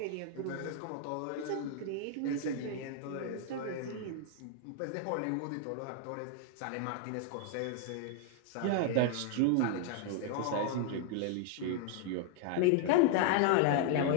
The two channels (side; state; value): both; different; correlation 0.00